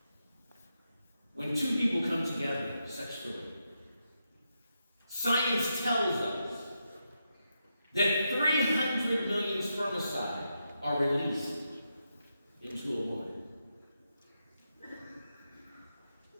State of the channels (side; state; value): both; inverted; correlation -0.84